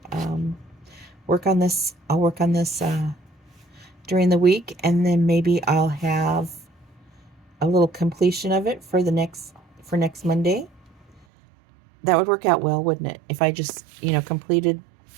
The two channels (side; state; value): left; drops out; at 11.2 s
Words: work on this. I'll work on this during the week, and then maybe I'll have a little completion of it for next Monday. That would work out well, wouldn't it? If I just,